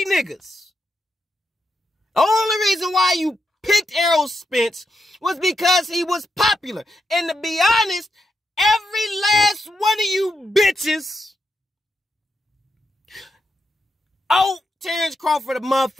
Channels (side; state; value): both; normal; correlation 0.83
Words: niggas. The only reason why you picked Errol Spence was because he was popular. And to be honest, every last one of you bitches owe Terrence Crawford a